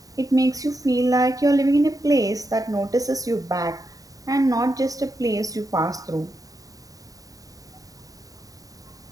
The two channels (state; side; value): late; left; 0.17 ms